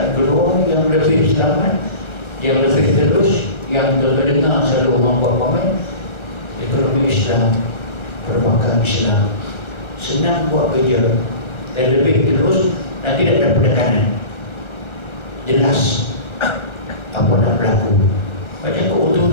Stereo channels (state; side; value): late; right; 1.3 ms